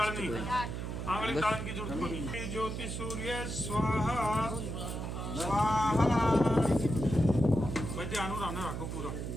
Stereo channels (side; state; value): right; noise; hum, 5 dB below the sound